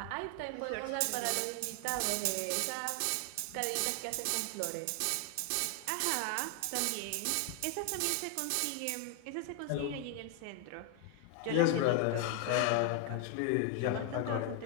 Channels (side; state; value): both; different; correlation 0.00